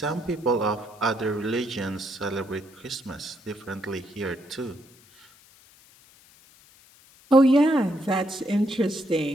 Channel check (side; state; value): left; noise; hiss, 26 dB below the sound